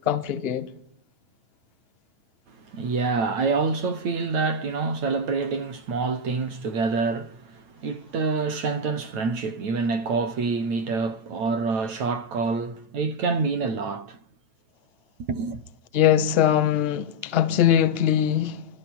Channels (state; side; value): late; left; 9.1 ms